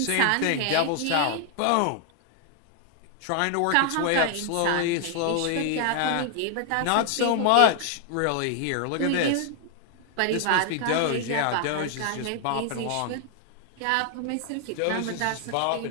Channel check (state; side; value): different; both; correlation 0.00